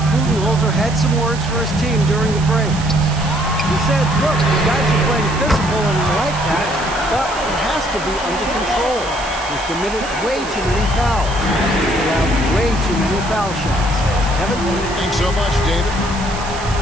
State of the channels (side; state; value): right; noise; hiss, 12 dB below the sound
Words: Budenholzer had some words for his team during the break. He said, look, the guys are playing physical and we like that, but it has to be under control. We've committed way too many fouls. We have way too many foul shots. Kevin? Thanks so much, David.